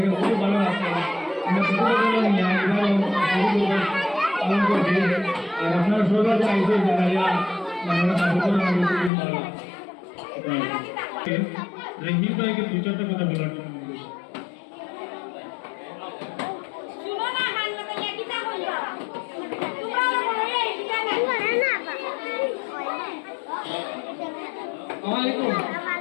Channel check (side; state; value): right; drops out; at 9.1 s